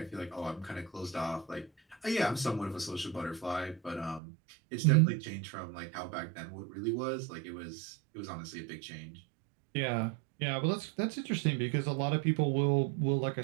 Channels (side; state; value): left; drops out; at 4.2 s